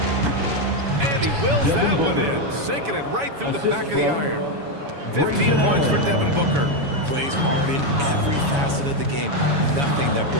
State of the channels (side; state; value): left; late; 7.1 ms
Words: And he wills that one in, sinking it right through the back of the iron. 15 points for Devin Booker. Plays hard in every facet of the game. Nothing that